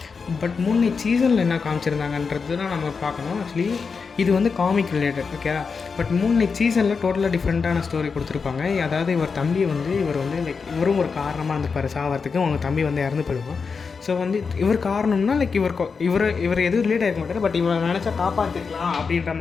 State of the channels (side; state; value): right; quieter; 5.2 dB